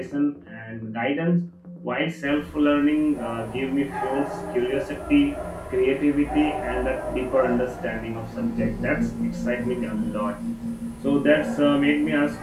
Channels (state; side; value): identical; both; correlation 1.00